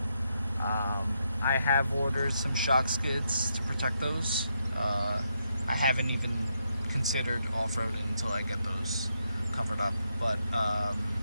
I have ordered some shock skids to protect those. I haven't even considered off-roading until I get those covered up. But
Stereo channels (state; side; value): inverted; both; correlation -0.80